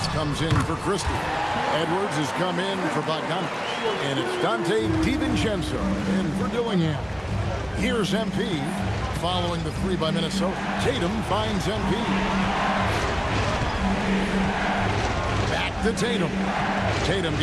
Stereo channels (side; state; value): both; identical; correlation 1.00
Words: comes in for Christie. Edwards has come in for Bogdanovich. And it's Dante DiVincenzo in for Dillingham. Here's MP following the 3 by Minnesota. Tatum finds MP. Back to Tatum. Tatum